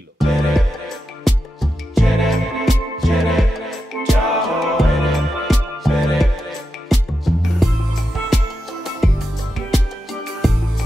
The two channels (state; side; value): normal; both; correlation 0.88